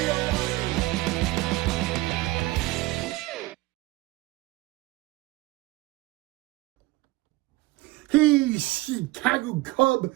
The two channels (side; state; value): left; quieter; 20.1 dB